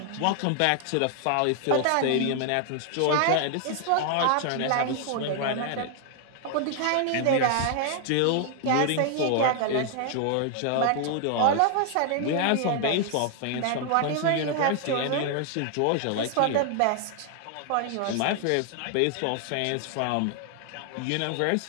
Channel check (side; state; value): both; different; correlation 0.00